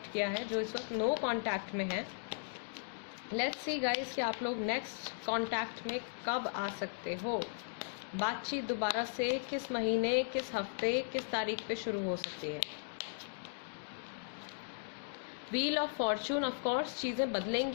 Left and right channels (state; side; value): silent; right; digital silence